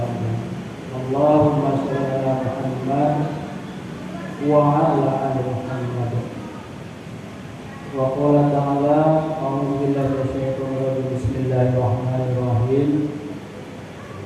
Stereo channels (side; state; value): both; identical; correlation 1.00